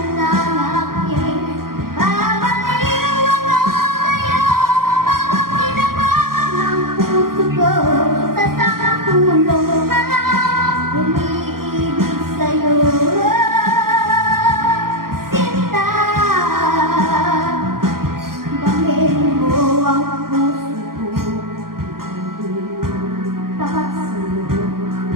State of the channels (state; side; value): late; left; 0.92 ms